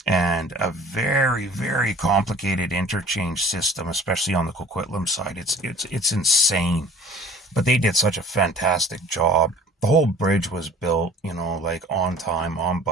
And a very, very complicated interchange system, especially on the Coquitlam side. It's insane. But they did such a fantastic job. The whole bridge was built, like on time, on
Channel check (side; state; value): both; normal; correlation 0.47